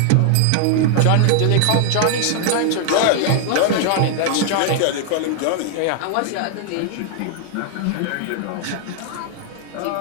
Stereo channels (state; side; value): different; both; correlation 0.00